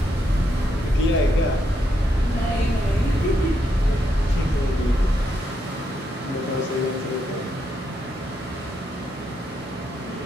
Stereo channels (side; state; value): both; normal; correlation 0.79